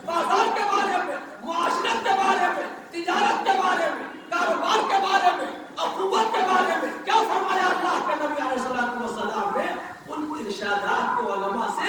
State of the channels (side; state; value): both; identical; correlation 1.00